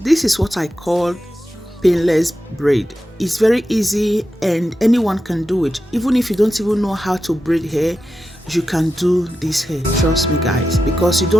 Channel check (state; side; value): normal; both; correlation 0.90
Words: this is what I call painless braid. It's very easy and anyone can do it. Even if you don't even know how to braid hair, you can do this hair. Trust me, guys, because you